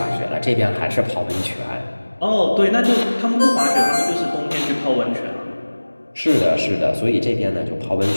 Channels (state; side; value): inverted; both; correlation -1.00